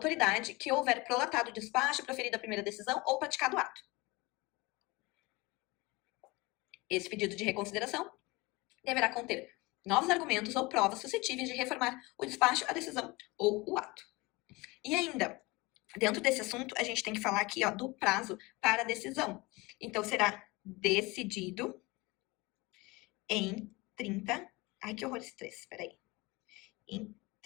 que houver prolatado o despacho, proferido a primeira decisão ou praticado o ato. Esse pedido de reconsideração deverá conter novos argumentos ou provas suscetíveis de reformar o despacho, a decisão ou o ato. E ainda, dentro desse assunto, a gente tem que falar aqui, ó, do prazo para a decisão. Então, será decidido em 30... Ai, que horror esse 3, peraí. Em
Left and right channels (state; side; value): quieter; right; 23.5 dB